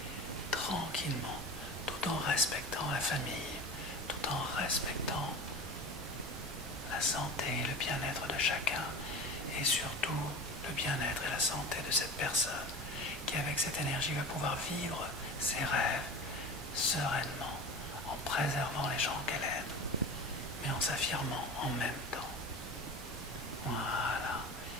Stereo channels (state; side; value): normal; both; correlation 0.33